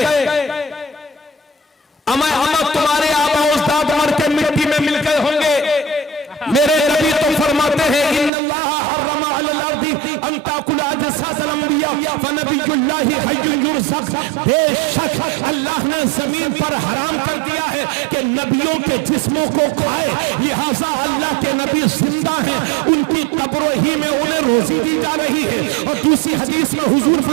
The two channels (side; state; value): left; drops out; at 8.3 s